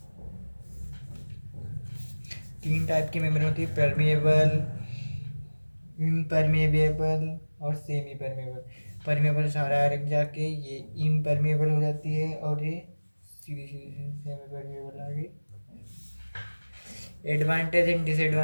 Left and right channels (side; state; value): both; inverted; correlation -1.00